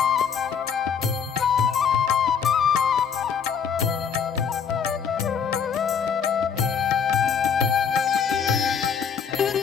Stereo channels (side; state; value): right; quieter; 6.9 dB